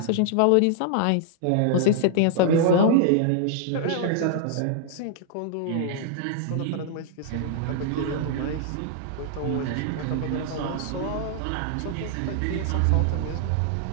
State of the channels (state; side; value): different; both; correlation -0.01